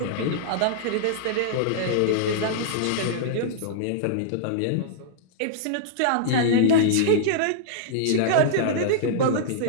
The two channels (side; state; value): both; different; correlation -0.02